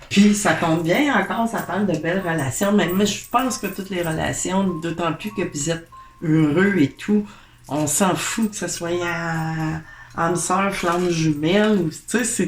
Puis ça tombe bien encore, ça parle de belles relations. Mais moi, je pense que toutes les relations, d'autant plus que vous êtes heureux et tout, on s'en fout que ce soit âme sœur, flamme jumelle. Tu sais,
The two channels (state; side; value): identical; both; correlation 1.00